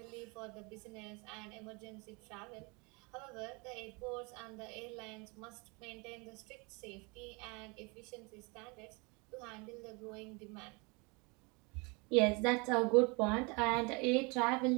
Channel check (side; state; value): left; quieter; 29.5 dB